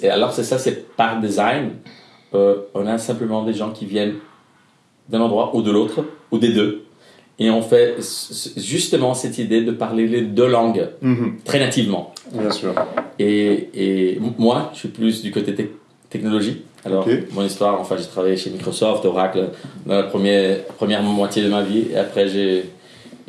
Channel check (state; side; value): identical; both; correlation 1.00